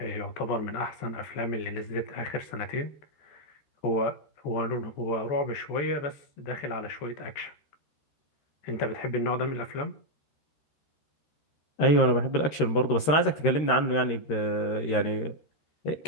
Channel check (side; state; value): right; late; 13 ms